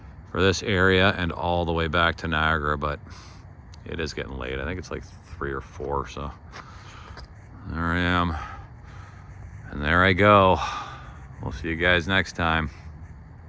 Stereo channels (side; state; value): both; identical; correlation 1.00